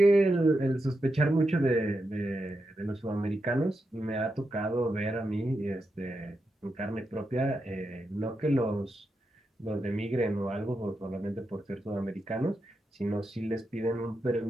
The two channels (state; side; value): normal; both; correlation 0.86